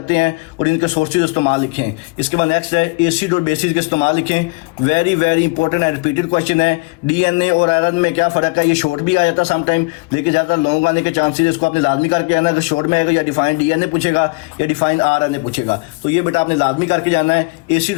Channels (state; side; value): quieter; right; 28.0 dB